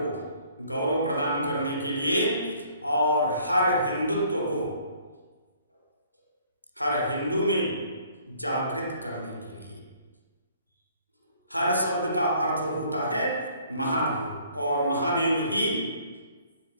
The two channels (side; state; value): both; inverted; correlation -0.59